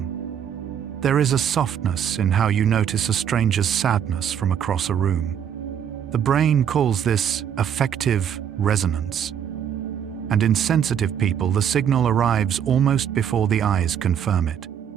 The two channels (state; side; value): quieter; left; 8.7 dB